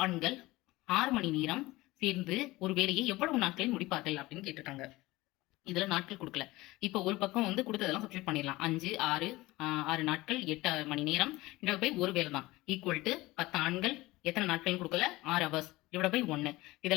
ஆண்கள் 6 மணி நேரம் சேர்ந்து ஒரு வேலையை எவ்வளவு நாட்களில் முடிப்பார்கள் அப்படின்னு கேட்டிருக்காங்க. இதுல நாட்கள் கொடுக்கல. இப்ப ஒரு பக்கம் வந்து கொடுத்ததெல்லாம் சப்ஸ்டியூட் பண்ணிடலாம். 5 6 நாட்கள் 8 மணி நேரம் டிவைட் பை ஒரு வேலை தான் ஈக்குவல் டு 10 ஆண்கள் எத்தனை நாட்கள் கொடுக்கல 6 ஹவர்ஸ் டிவைட் பை 1.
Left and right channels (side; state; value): right; quieter; 19.6 dB